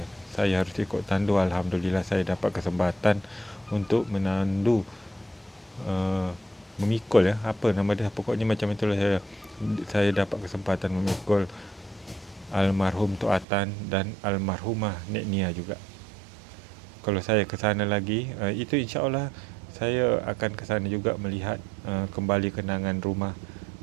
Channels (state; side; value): drops out; left; at 13.5 s